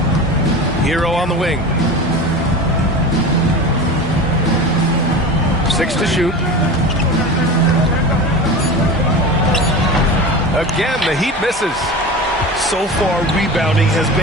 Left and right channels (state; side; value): normal; both; correlation 0.30